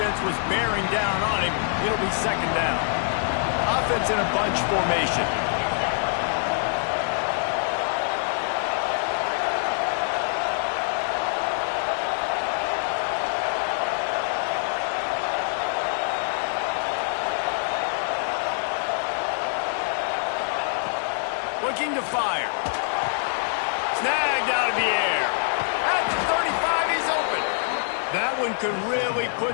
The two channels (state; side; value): silent; right; digital silence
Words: was bearing down on him. It'll be second down. Offense in a bunch formation. Looking to fire. Snagged out of the air. At the 35, he's open. That one could really